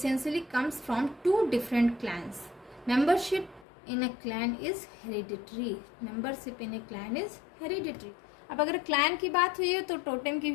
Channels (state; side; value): drops out; right; at 3.7 s